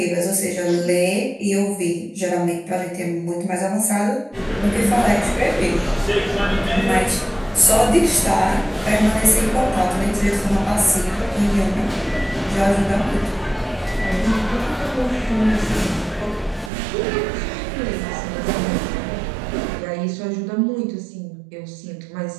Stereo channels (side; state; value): left; drops out; at 16.7 s